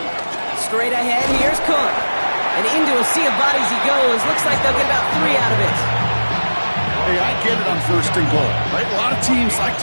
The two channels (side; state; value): both; inverted; correlation -1.00